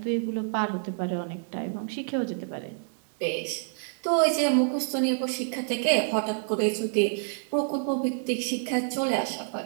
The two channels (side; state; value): left; silent; digital silence